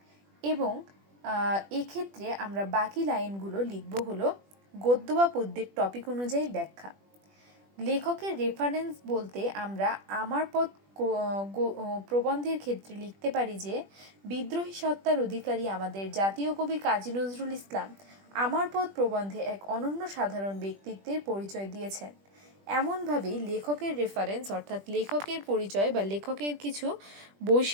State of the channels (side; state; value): left; late; 20 ms